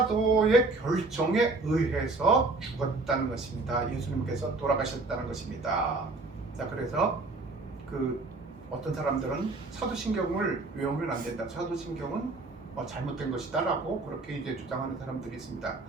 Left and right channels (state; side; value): quieter; left; 3.4 dB